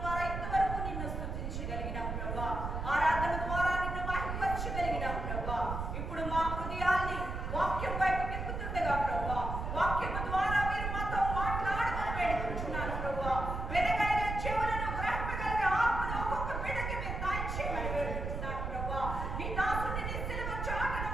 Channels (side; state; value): right; noise; rumble, 4 dB below the sound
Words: ఇంతవరకు నిన్ను స్తుతించగలిగినాం ప్రభువా, ఆరాధన ద్వారా నిన్ను మహిమపరచగలిగినాం ప్రభువా. ఇప్పుడు మా హృదయాల్ని వాక్యం వైపు తిప్పుతుండగా ప్రభువా, వాక్యము ద్వారా మీరు మాతో మాట్లాడమని వేడుకుంటున్నాను ప్రభువా. వెనకైన చెవులను గ్రహింపగలిగే ఆత్మను ఒక్కొక్క బిడ్డకి మీరు దయచేయమని వేడుకుంటున్నాను ప్రభువా. నీ దాసుని నీ సిలువ చాటును